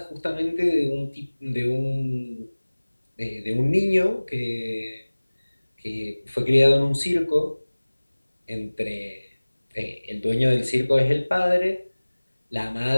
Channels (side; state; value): both; inverted; correlation -1.00